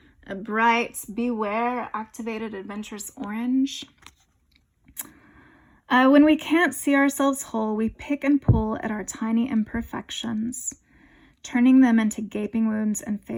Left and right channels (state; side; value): identical; both; correlation 1.00